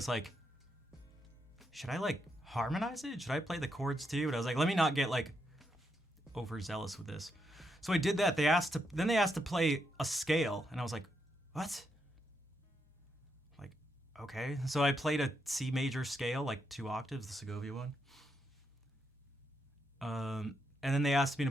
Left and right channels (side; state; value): both; normal; correlation 0.81